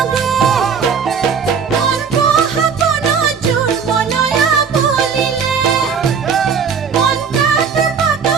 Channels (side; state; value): left; quieter; 6.3 dB